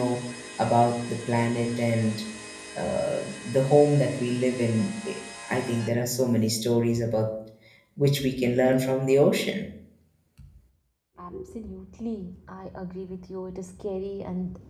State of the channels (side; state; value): both; identical; correlation 1.00